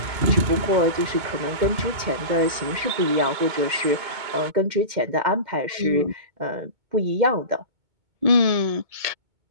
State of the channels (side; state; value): left; late; 2.2 ms